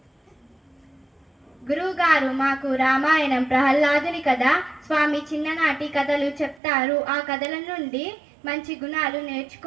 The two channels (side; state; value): left; drops out; at 6.6 s